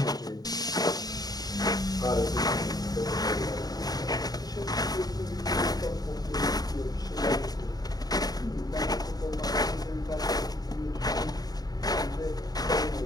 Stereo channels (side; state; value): right; late; 0.19 ms